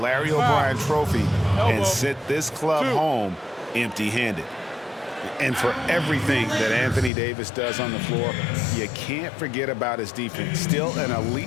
O'Brien trophy and sent this club home empty-handed. And for everything that Anthony Davis does on the floor, you can't forget about his defense. Still an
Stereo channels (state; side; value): drops out; right; at 7.1 s